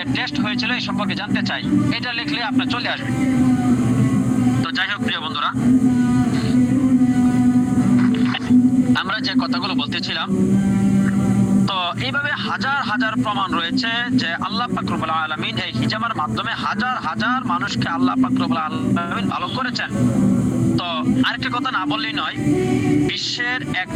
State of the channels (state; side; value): identical; both; correlation 1.00